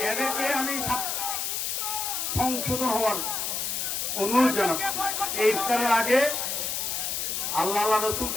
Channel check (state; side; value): noise; left; hiss, 1 dB below the sound